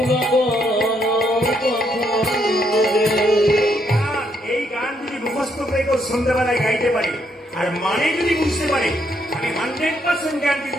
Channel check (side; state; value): both; normal; correlation 0.74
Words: এই গান যদি মুখস্থ করে কেউ সন্ধ্যাবেলায় গাইতে পারে আর মানে যদি বুঝতে পারে, আমি 100% গ্যারান্টি